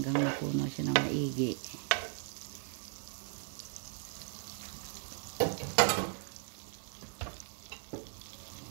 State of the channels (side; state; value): left; silent; 53 dB below the other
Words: mapuno siya ng maigi.